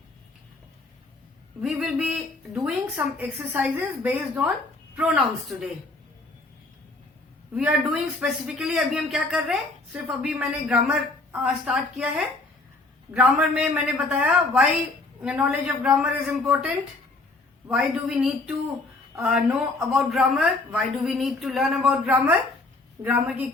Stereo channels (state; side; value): quieter; right; 3.1 dB